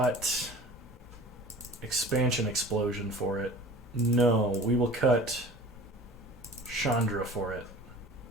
Expansion Explosion for it. No, we will cut Chandra for it.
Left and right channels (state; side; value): normal; both; correlation 0.43